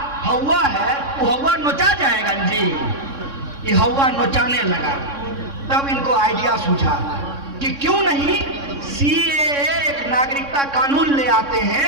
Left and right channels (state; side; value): late; left; 3.6 ms